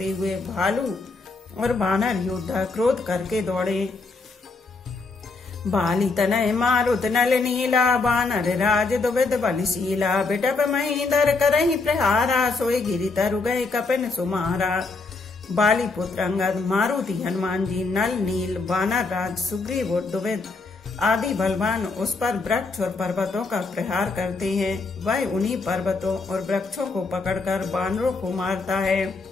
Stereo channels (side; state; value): right; quieter; 3.9 dB